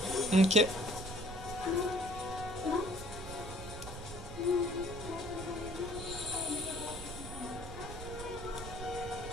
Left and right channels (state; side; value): noise; right; rumble, 10 dB below the sound